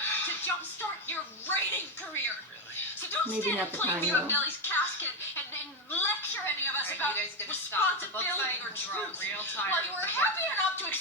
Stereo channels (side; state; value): both; normal; correlation 0.09